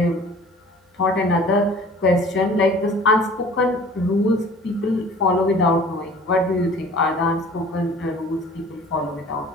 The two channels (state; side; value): normal; both; correlation 0.47